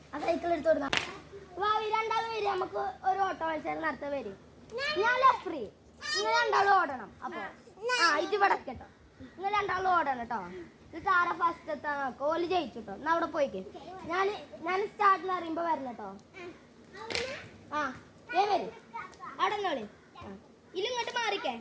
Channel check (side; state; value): both; identical; correlation 1.00